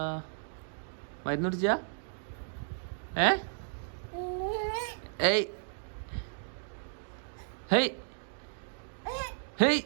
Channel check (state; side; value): silent; left; digital silence